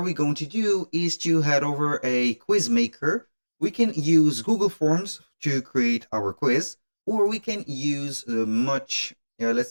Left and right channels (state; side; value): inverted; both; correlation -1.00